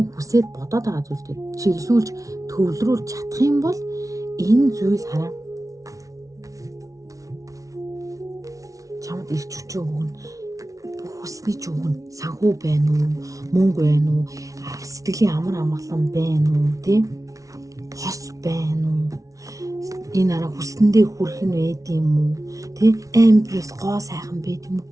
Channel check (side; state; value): left; late; 0.17 ms